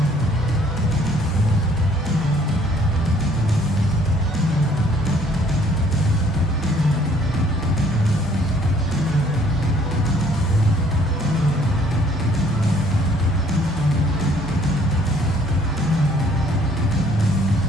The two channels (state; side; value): normal; both; correlation 0.61